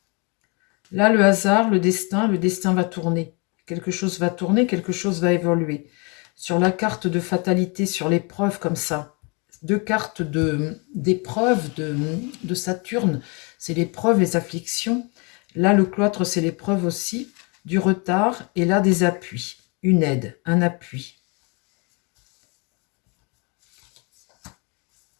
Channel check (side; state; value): right; quieter; 31.7 dB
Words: Là, le hasard, le destin va tourner. Quelque chose va tourner, quelque chose va évoluer. Sur la carte de fatalité, sur l'épreuve comme ça, deux cartes d'épreuve de Saturne, c'est l'épreuve, les afflictions. Là, le cloître, c'est l'épreuve aussi, du retard, et là, des appuis, une aide, un appui.